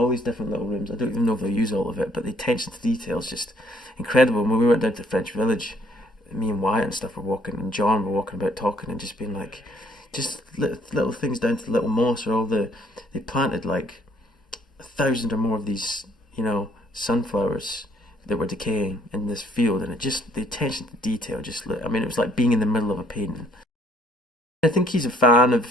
these different little rooms. I don't even know if they'll use all of it, but the attention to detail is just incredible. And when we went down to the French Village, me and Wyatt and stuff were walking, and John were walking about talking and just being just little things down to the little moss, or they planted 1,000 or more of these, sunflowers that were decaying in this field, and the attention to detail it was like being in the middle of a painting. I think he's a fan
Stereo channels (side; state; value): both; normal; correlation 0.63